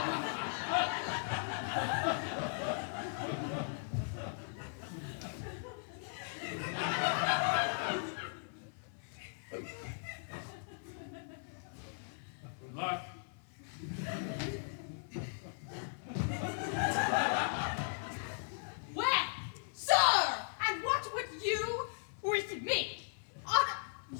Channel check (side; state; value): right; silent; 52 dB below the other